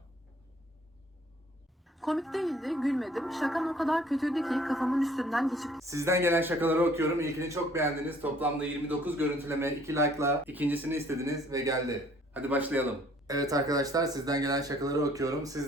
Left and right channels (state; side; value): normal; both; correlation 0.58